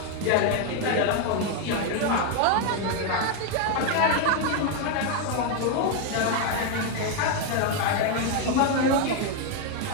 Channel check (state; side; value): different; both; correlation 0.01